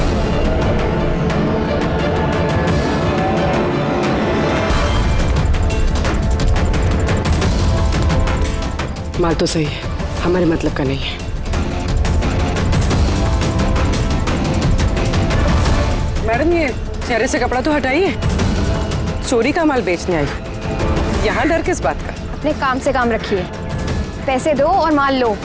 माल तो सही है, हमारे मतलब का नहीं है। मैडम ये चेहरे से कपड़ा तो हटाइए, चोरी का माल बेचने आई, यहाँ डर किस बात का? अपने काम से काम रखिए, पैसे दो और माल लो।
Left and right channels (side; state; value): both; identical; correlation 1.00